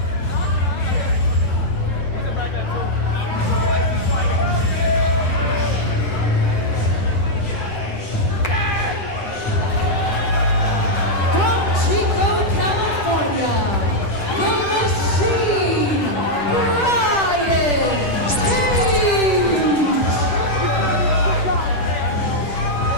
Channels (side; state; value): right; late; 10 ms